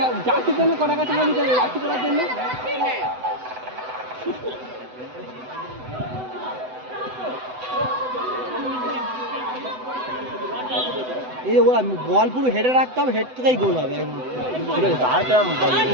যাচ্ছির জন্য কটাকা টাকা দিতে হবে যাচ্ছি করার জন্য। এই যে ওরা বল পুরো হেডে রাখতে হবে, হেড থেকেই গোল হবে।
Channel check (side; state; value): left; late; 7.9 ms